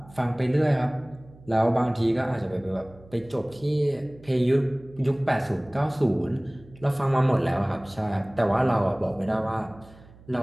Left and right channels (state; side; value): noise; right; hum, 23 dB below the sound